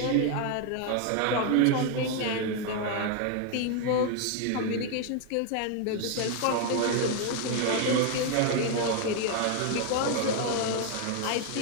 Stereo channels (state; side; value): different; both; correlation 0.00